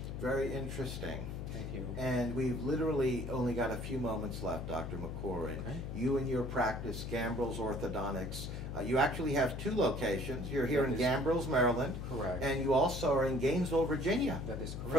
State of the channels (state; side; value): noise; left; hum, 6 dB below the sound